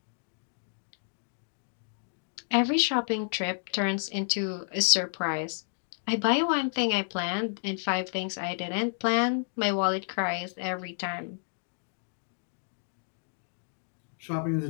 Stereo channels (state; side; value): silent; right; digital silence